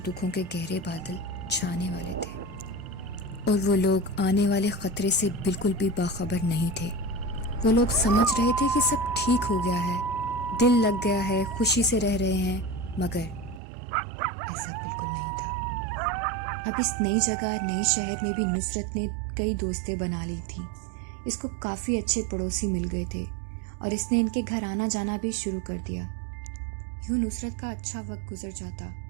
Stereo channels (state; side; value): drops out; left; at 13.6 s